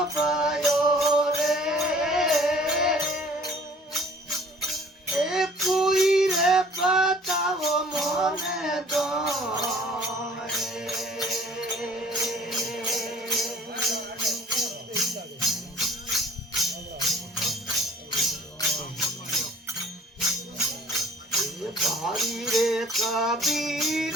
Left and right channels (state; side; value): normal; both; correlation 0.53